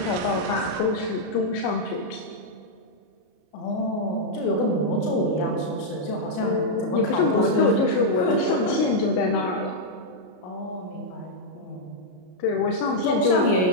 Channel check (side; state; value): right; late; 33 ms